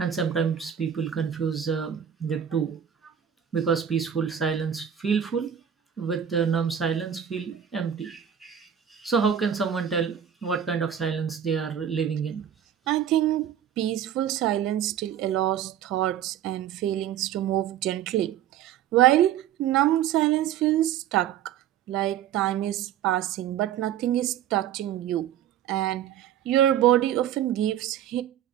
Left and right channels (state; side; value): quieter; left; 9.7 dB